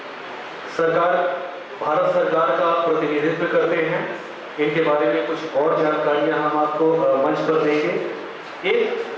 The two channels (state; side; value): identical; both; correlation 1.00